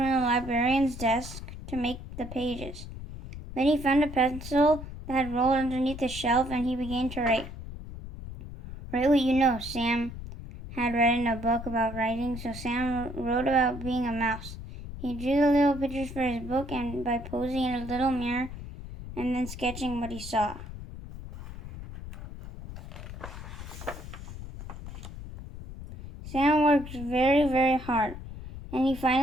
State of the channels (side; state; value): left; noise; rumble, 11 dB below the sound